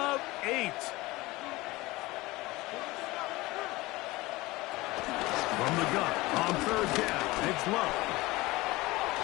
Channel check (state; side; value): quieter; right; 20.5 dB